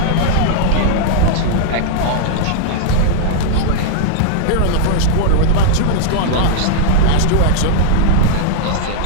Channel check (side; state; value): both; different; correlation -0.01